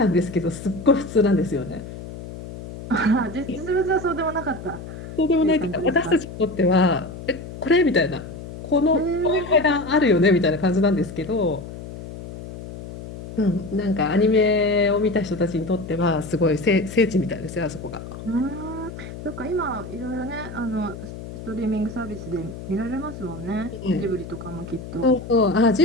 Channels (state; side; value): noise; left; hum, 11 dB below the sound